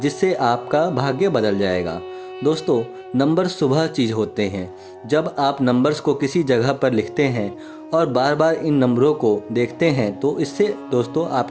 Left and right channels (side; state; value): both; identical; correlation 1.00